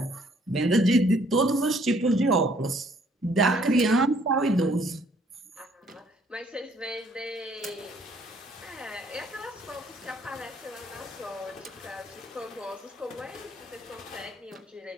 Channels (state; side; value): normal; both; correlation 0.63